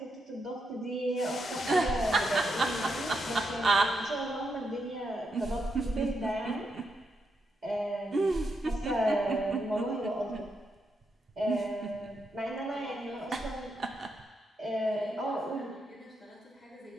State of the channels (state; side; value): normal; both; correlation 0.82